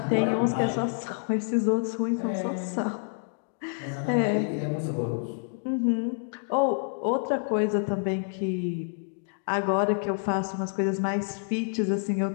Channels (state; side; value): silent; right; digital silence